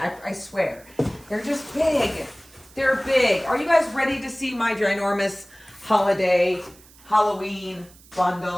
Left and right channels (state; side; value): noise; right; hiss, 25 dB below the sound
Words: swear. They're just big. They're big. Are you guys ready to see my ginormous holiday Halloween